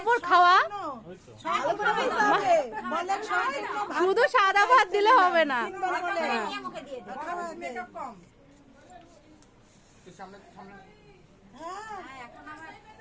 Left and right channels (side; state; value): both; identical; correlation 1.00